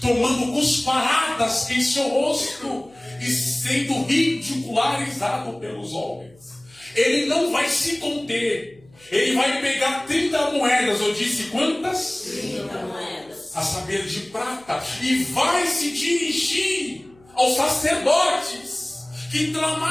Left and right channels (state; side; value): noise; left; hum, 29 dB below the sound